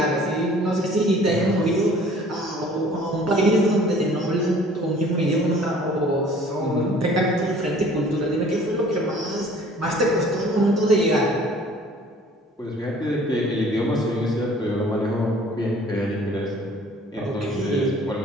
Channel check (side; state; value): both; normal; correlation 0.52